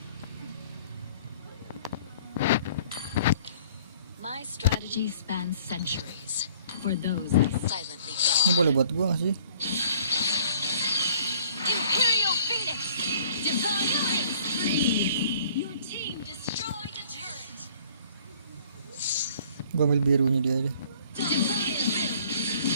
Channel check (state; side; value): inverted; both; correlation -0.56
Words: My strategy spans centuries. For those who silently Ini guard. boleh buat gua nggak sih? Imperial Phoenix. Divine Prince free. Your team destroyed a turret. Gua ambil birunya dia aja. Divine Rim.